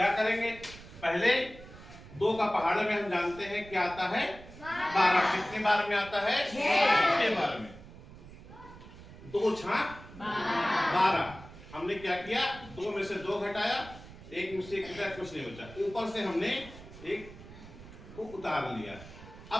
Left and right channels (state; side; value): noise; right; rumble, 17 dB below the sound